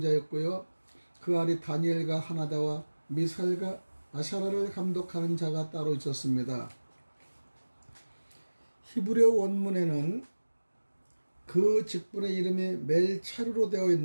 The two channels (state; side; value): inverted; both; correlation -1.00